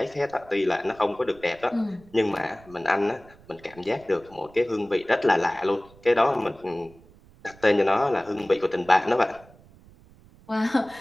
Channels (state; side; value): noise; right; rumble, 25 dB below the sound